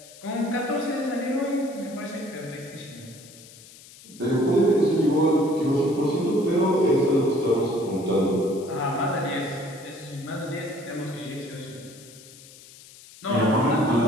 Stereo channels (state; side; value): noise; left; hiss, 20 dB below the sound